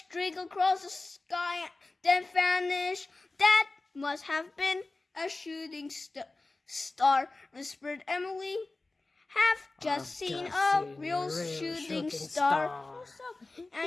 across the sky, then vanished. That must have been a shooting star, whispered Emily. Have just seen a real shooting star.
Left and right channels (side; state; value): right; quieter; 3.3 dB